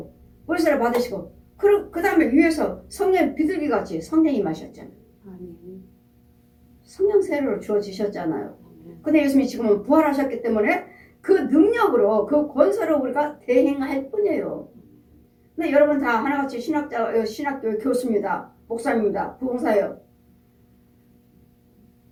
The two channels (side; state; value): both; identical; correlation 1.00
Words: 그 다음에 위에서 성령 비둘기같이 성령이 마셨잖아요. 성령 세례로 주어지셨잖아요. 근데 예수님이 지금은 부활하셨기 때문에 그 능력으로 그 권세로 우리가 대행할 뿐이에요. 근데 여러분 다 하나같이 신학교 교수입니다. 목사입니다. 부흥사예요.